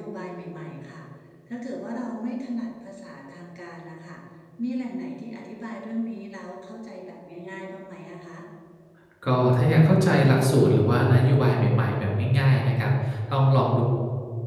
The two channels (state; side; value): identical; both; correlation 1.00